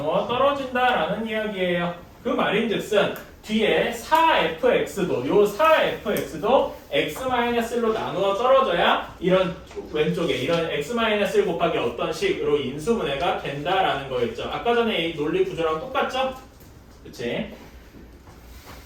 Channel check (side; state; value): both; identical; correlation 1.00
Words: 떨어진다라는 이야기예요. 그 말인즉슨 뒤에 4fx도 요 4fx도 x-1로 나누어 떨어져야 이런 왼쪽에 이런 x-1 곱하기 어떤 식으로 인수분해가 된다라는 거였죠. 아까 전에 이 논리 구조랑 똑같죠? 그치?